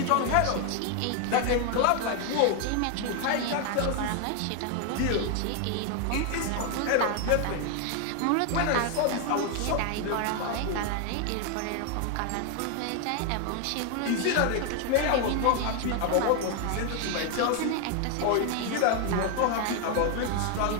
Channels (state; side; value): different; both; correlation 0.00